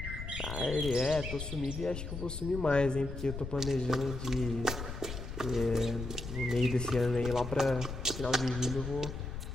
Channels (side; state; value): left; noise; rumble, 7 dB below the sound